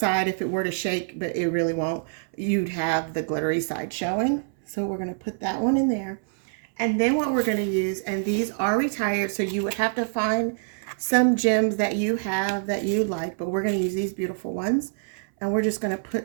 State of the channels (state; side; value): silent; left; 61 dB below the other